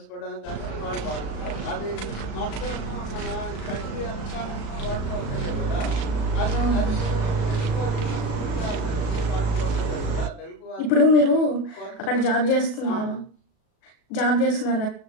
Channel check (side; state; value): right; late; 36 ms